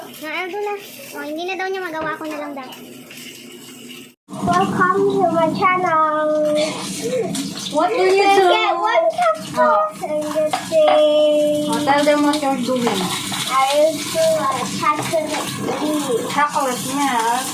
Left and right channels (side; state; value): both; identical; correlation 1.00